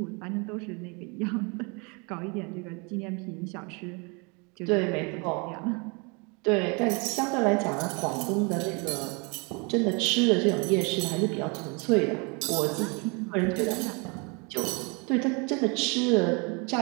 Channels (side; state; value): left; quieter; 31.3 dB